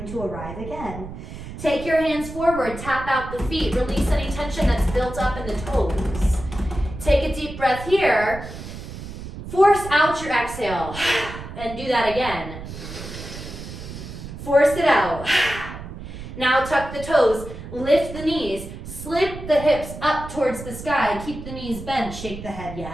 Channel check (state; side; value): noise; right; rumble, 11 dB below the sound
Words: to arrive again. Take your hands forward, tap out the feet, release any tension that's built up in the toes. Take a deep breath here. Force out your exhale, and do that again. Force it out. Now tuck the toes, lift the knees, slip the hips up towards the sky, keep the knees bent, shake the head